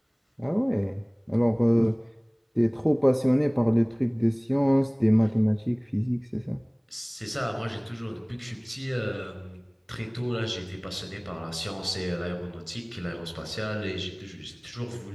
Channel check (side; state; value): both; identical; correlation 1.00